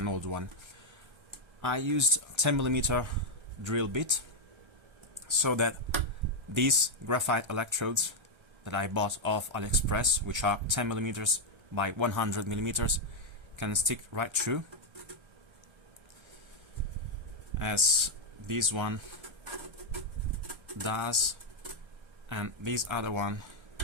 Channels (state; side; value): late; left; 1.3 ms